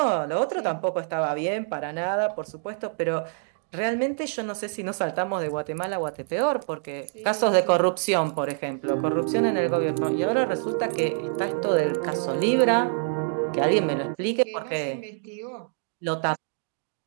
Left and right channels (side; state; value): left; silent; digital silence